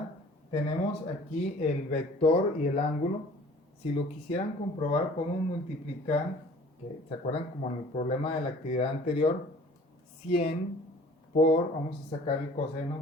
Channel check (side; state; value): both; normal; correlation 0.49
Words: Tenemos aquí el vector y el ángulo. Si lo quisieran comprobar, podemos multiplicar, que se acuerdan como en el problema de la actividad anterior, 100 por, vamos a sacar el